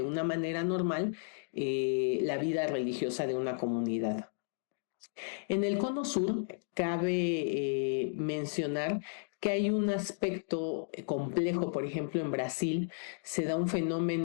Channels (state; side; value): silent; right; digital silence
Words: una manera normal la vida religiosa de una comunidad. En el Cono Sur cabe mencionar que hay un aspecto complejo, por ejemplo, en Brasil se da un